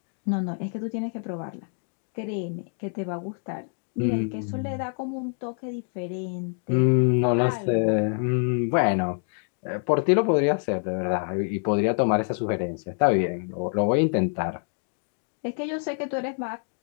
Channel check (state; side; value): silent; right; 58 dB below the other